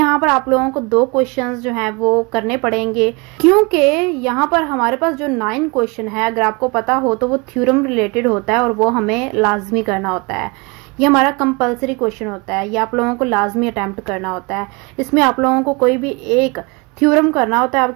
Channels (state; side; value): quieter; left; 28.4 dB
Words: पर आप लोगों को 2 क्वेश्चंस जो हैं वो करने पड़ेंगे, क्योंकि यहाँ पर हमारे पास जो 9 क्वेश्चन है, अगर आपको पता हो तो वो थ्योरम रिलेटेड होता है और वो हमें लाजमी करना होता है। ये हमारा कंपलसरी क्वेश्चन होता है, ये आप लोगों को लाजमी अटेम्प्ट करना होता है। इसमें आप लोगों को कोई भी एक थ्योरम करना होता है।